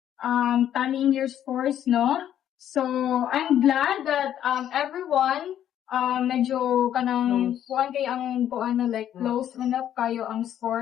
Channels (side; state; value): right; quieter; 10.7 dB